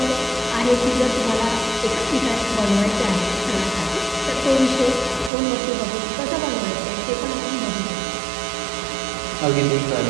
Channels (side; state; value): left; drops out; at 5.3 s